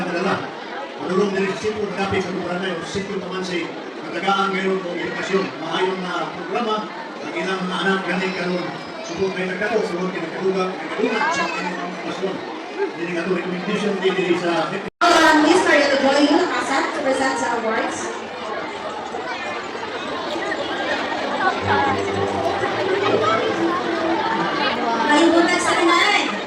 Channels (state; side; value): identical; both; correlation 1.00